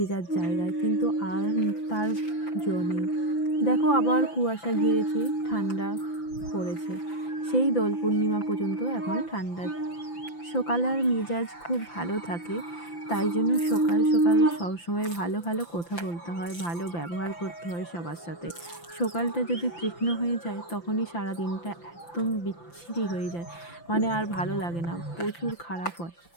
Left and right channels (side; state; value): right; late; 5.9 ms